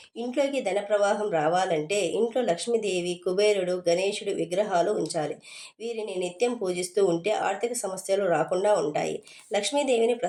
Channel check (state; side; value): identical; both; correlation 1.00